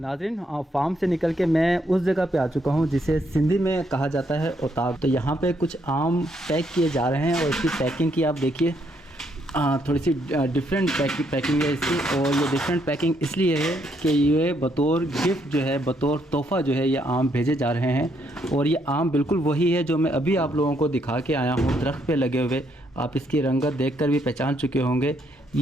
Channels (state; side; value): normal; both; correlation 0.73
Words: फार्म से निकल के मैं उस जगह पे आ चुका हूँ जिसे सिंधी में कहा जाता है उताब। तो यहाँ पे कुछ आम पैक किए जा रहे हैं और इसकी पैकिंग की आप देखिए, थोड़ी सी डिफरेंट पैकिंग है इसकी। और ये डिफरेंट पैकिंग इसलिए है कि ये बतौर गिफ्ट जो है, बतौर तोहफ़ा जो है, ये आम भेजे जा रहे हैं। और ये आम बिल्कुल वही है जो मैं अभी आप लोगों को दिखा के आया हूँ, दरख्त पे लगे हुए। आप इसकी रंगत देखकर भी पहचान चुके होंगे,